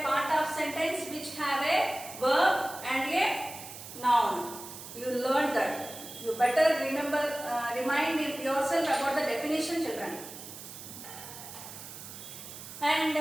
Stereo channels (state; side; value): noise; right; hiss, 13 dB below the sound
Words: part of sentence which have a verb and a noun. You learned that. You better remind yourself about the definition, children. And